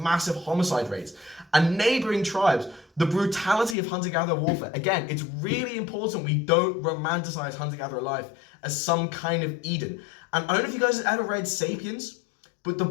massive homicide rates. And neighboring tribes, the brutality of hunter-gatherer warfare. Again, it's really important we don't romanticize hunter-gatherer life as some kind of Eden. And I don't know if you guys have ever read Sapiens, but the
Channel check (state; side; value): drops out; right; at 3.8 s